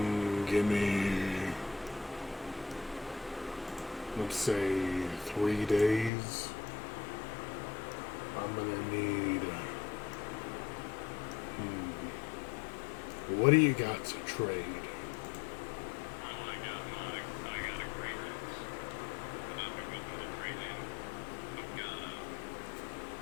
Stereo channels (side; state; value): right; drops out; at 6.1 s